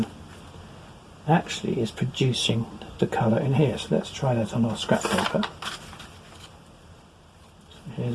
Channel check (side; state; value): both; identical; correlation 1.00